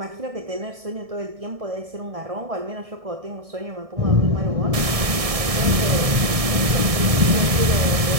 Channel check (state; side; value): late; left; 1.6 ms